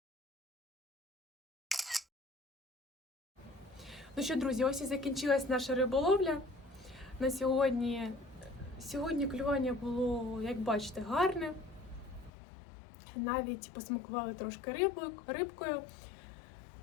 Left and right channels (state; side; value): drops out; right; at 12.3 s